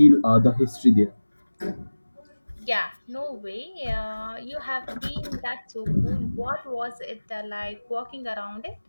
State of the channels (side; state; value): both; inverted; correlation -1.00